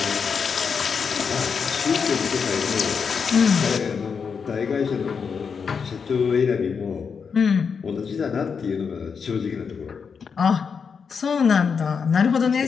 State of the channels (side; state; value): right; quieter; 6.0 dB